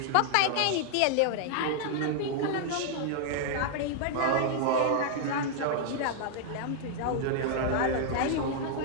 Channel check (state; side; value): different; both; correlation -0.01